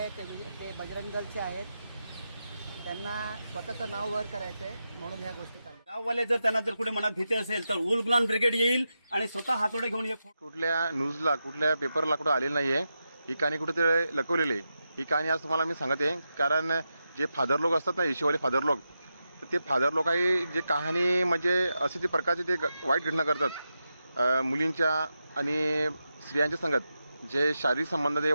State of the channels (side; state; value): both; inverted; correlation -0.88